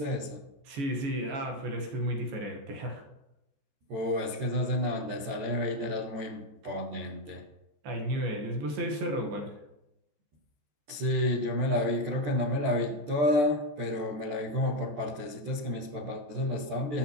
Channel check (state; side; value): late; left; 14 ms